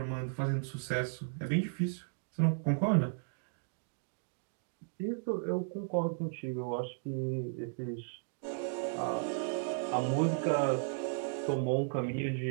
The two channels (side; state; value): left; silent; digital silence